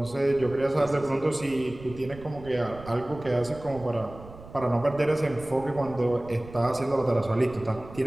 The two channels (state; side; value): noise; right; rumble, 17 dB below the sound